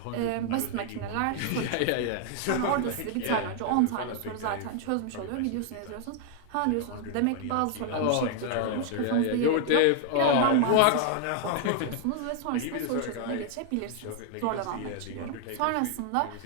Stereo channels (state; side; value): different; both; correlation 0.00